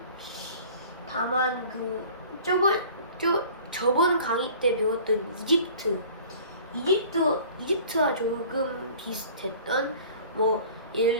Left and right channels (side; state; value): both; inverted; correlation -0.47